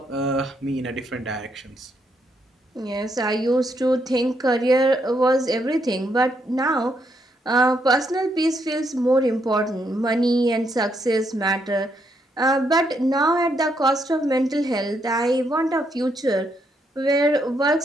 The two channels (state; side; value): normal; both; correlation 0.76